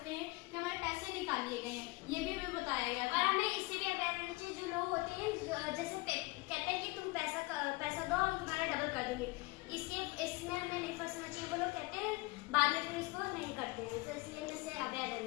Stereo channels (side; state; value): right; quieter; 23.5 dB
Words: हैं कि हमारे पैसे निकाल लिए गए हैं, ये भी हमें बताया गया था। और हमें इससे भी अवेयर रहना चाहिए, जो लोग होते हैं जैसे कहते हैं कि तुम पैसा दो हम तुम्हारा डबल कर देंगे, इसमें हमें नहीं फंसना चाहिए। वो लोग कहते हैं बाद में फिर इसको नहीं करते हैं, तो इसलिए हमें इससे अवेयर